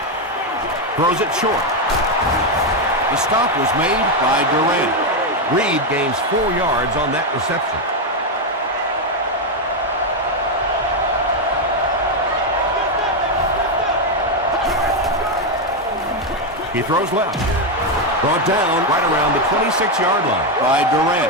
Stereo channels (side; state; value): both; normal; correlation 0.05